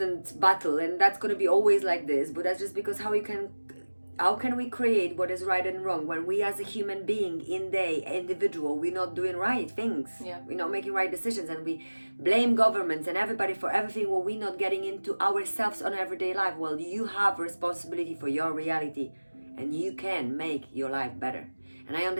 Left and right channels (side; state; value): both; inverted; correlation -1.00